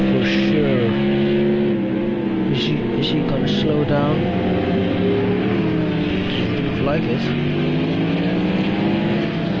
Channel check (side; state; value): both; identical; correlation 1.00